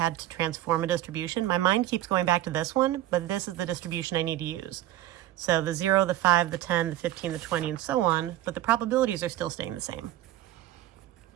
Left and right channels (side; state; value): left; quieter; 14.1 dB